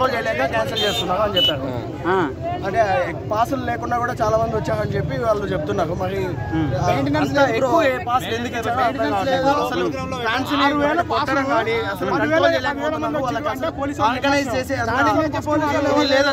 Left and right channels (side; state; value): both; identical; correlation 1.00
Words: చేయలేక క్యాన్సిల్ చేస్తున్నారు అని చెప్పారు. అంటే పాసులు లేకుండా కూడా చాలా మంది వచ్చారని చెప్పి వాళ్ళు చెప్తున్నారు. మరి ఎక్కువ పాసులు ఎందుకు అసలు ఫ్యాన్స్ కానీ అసలు కంట్రోల్ చేయలేకపోతున్నారు. వాళ్ళకి ఆర్గనైజ్ చేసే